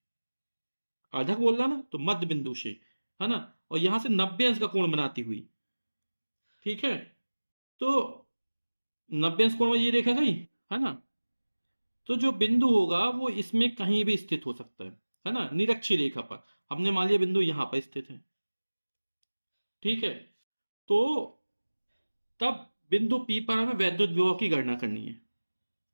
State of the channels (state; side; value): inverted; both; correlation -1.00